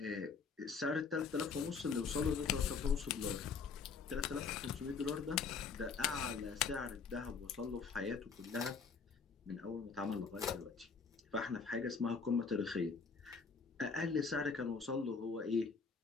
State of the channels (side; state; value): right; quieter; 5.3 dB